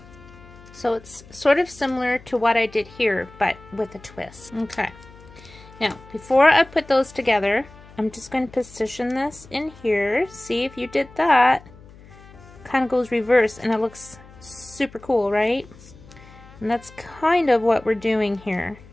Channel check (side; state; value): left; noise; hum, 21 dB below the sound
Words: So it's sort of similar to what I did here, but with a twist. Okay. Now, before I put those together, I'm just going to position this in here. See, if you did that, kind of goes reverse and it looks super cool, right? And that's kind of what we're doing here.